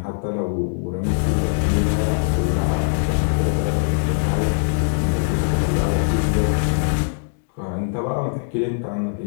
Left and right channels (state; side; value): silent; right; digital silence